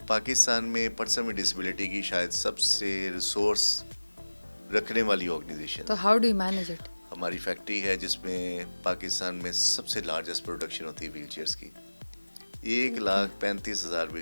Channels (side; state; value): both; inverted; correlation -1.00